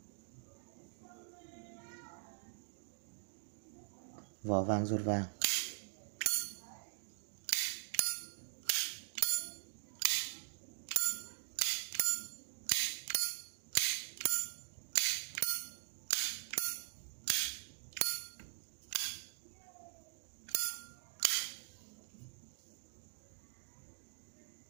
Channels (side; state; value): left; silent; digital silence